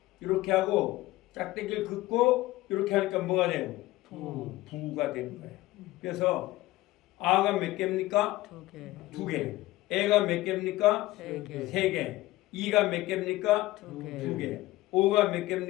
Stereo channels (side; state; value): right; quieter; 17.7 dB